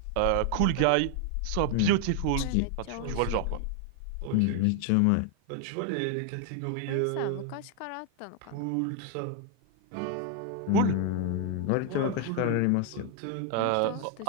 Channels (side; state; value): both; different; correlation 0.01